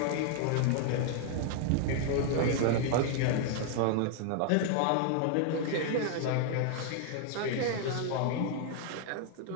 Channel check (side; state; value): both; different; correlation 0.00